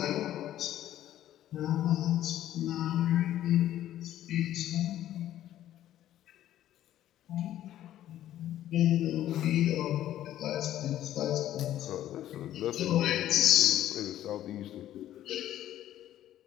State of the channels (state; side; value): quieter; right; 12.6 dB